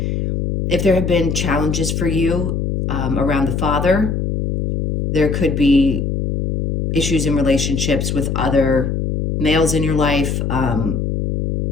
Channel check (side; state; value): left; noise; hum, 1 dB below the sound